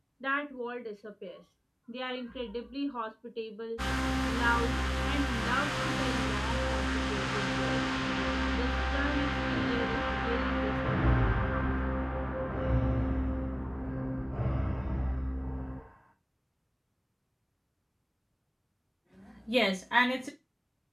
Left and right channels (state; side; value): identical; both; correlation 1.00